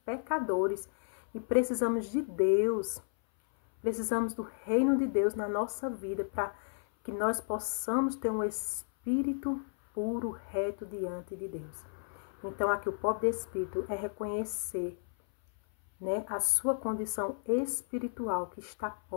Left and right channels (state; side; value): silent; right; 56 dB below the other